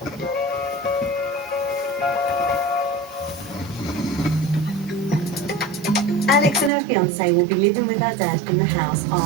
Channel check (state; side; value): drops out; left; at 6.7 s